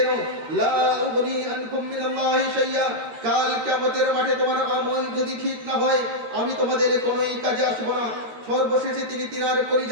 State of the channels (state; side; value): late; left; 13 ms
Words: নাও, লা উগনি আনকুম মিনাল্লাহি শাইয়া। কাল কিয়ামতের মাঠে তোমার আমল যদি ঠিক না হয়, আমি তোমাদের কোনোই কাজে আসবো না। সর্বশেষে তিনি তিনার